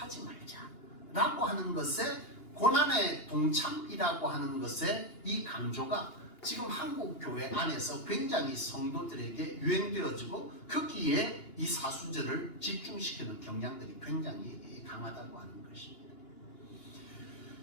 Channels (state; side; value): late; right; 2.9 ms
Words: 말자 라고 하는 것에 고난의 동참이라고 하는 것에 이 강조가 지금 한국 교회 안에서 굉장히 성도들에게 유행되어지고 거기에 이 사순절을 집중시키는 경향들이 굉장히 강하다고 하는 것입니다.